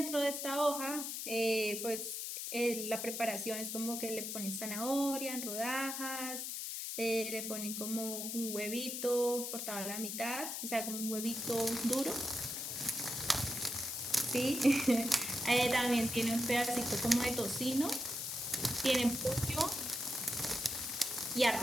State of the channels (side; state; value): left; noise; hiss, 4 dB below the sound